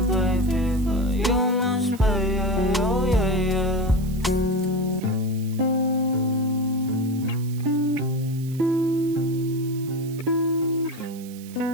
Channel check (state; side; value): noise; right; hiss, 20 dB below the sound